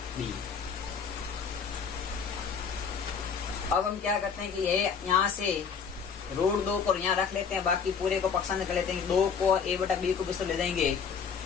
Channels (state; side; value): quieter; right; 6.4 dB